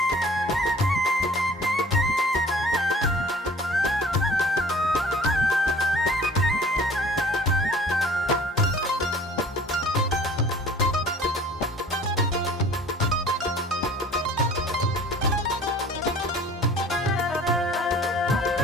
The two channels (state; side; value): normal; both; correlation 0.49